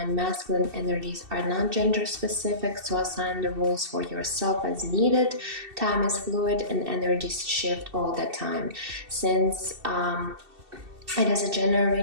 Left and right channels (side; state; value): left; late; 2.7 ms